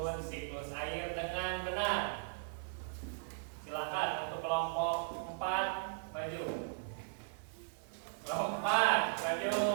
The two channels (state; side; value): silent; left; 53 dB below the other